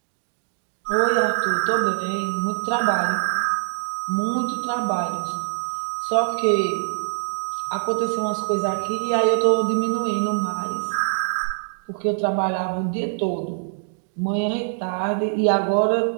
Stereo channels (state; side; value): silent; left; digital silence